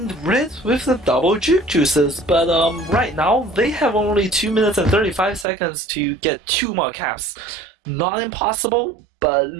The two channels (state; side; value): drops out; left; at 5.5 s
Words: Red with the double juke juices, but right now they have only 2 minutes and 35 seconds to get 2 more caps. Not impossible, but